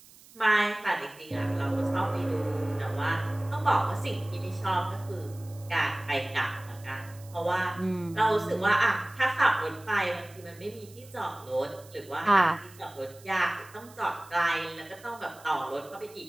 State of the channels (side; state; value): right; noise; hiss, 23 dB below the sound